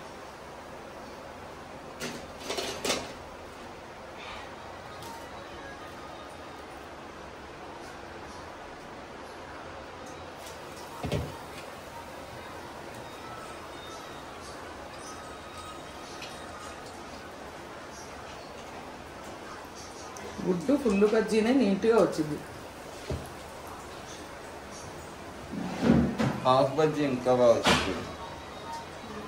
గుడ్డు ఫుల్ బజ్జీనే నీట్గా వచ్చింది. హాఫ్ బజ్జీ ఇంకా బాగా వచ్చింది.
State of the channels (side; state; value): both; identical; correlation 1.00